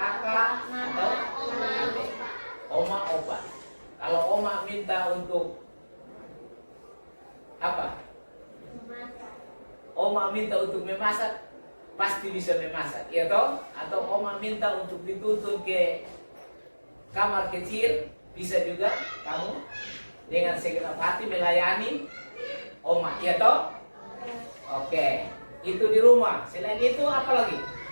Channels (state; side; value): inverted; both; correlation -1.00